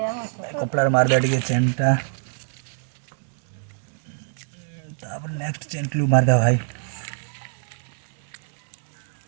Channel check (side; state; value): left; silent; 62 dB below the other